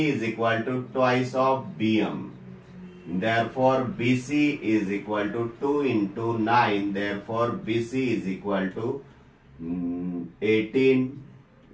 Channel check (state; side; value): identical; both; correlation 1.00